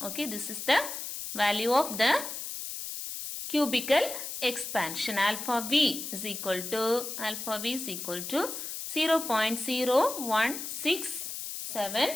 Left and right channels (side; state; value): left; noise; hiss, 7 dB below the sound